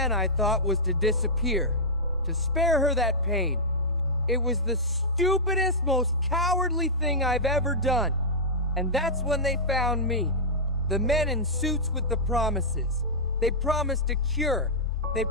I thought, was to disappear, to spare her that pain. It was the stupidest, most cowardly thing I've ever done. And that's when they found me. The men in suits with the promises. They promised a cure. They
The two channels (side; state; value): both; normal; correlation -0.11